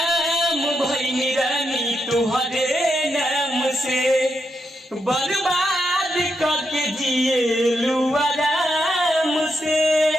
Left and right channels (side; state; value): both; normal; correlation 0.83